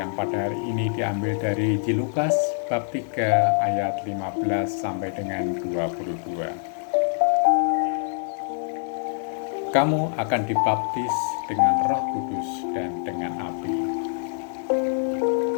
pada hari ini diambil dari Injil Lukas bab 3 ayat 15 sampai dengan 22. Kamu akan dibaptis dengan Roh Kudus dan dengan api.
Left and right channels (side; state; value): right; silent; digital silence